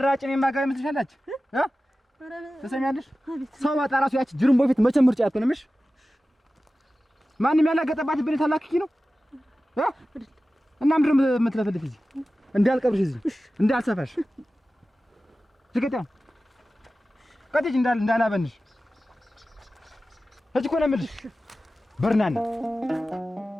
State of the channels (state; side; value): normal; both; correlation 0.95